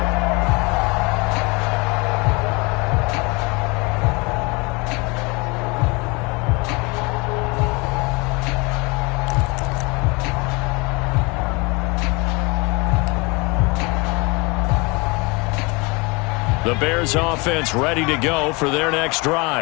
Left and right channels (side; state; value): right; quieter; 27.4 dB